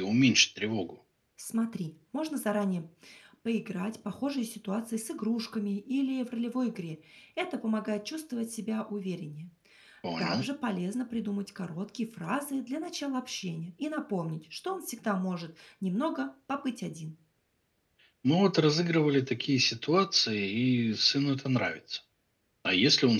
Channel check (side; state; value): both; identical; correlation 1.00